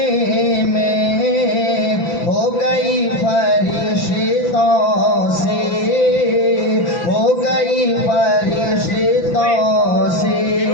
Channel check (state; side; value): late; right; 5.9 ms